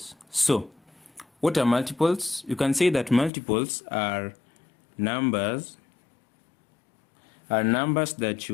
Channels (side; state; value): right; drops out; at 3.3 s